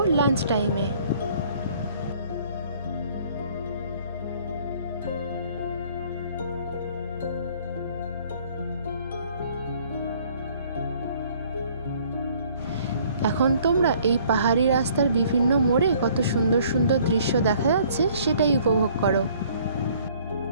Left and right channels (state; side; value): inverted; both; correlation -0.58